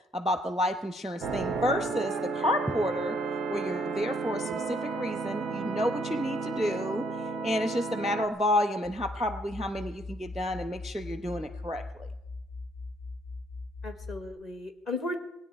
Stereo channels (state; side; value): normal; both; correlation 0.68